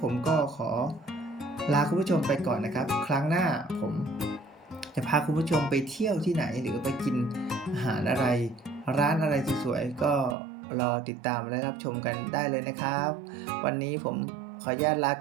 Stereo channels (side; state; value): left; drops out; at 10.4 s